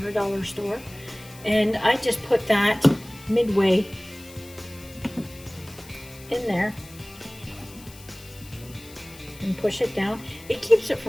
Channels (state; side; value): noise; left; hiss, 20 dB below the sound